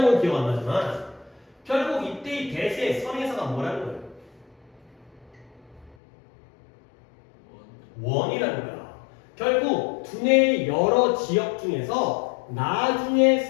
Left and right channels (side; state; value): right; drops out; at 6.0 s